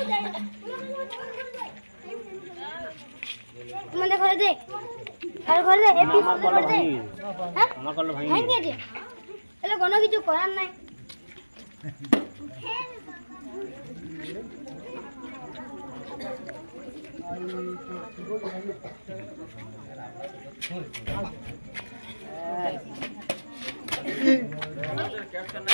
যায় মানে করে দে আর করে দে এপিসোড করে দে হ্যাঁ আমার কল ভাই ভেঙে দে তাহলে কোনো কিছু করার নাই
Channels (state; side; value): inverted; both; correlation -1.00